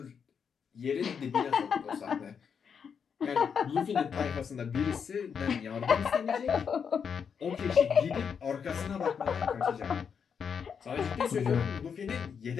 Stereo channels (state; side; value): quieter; right; 6.8 dB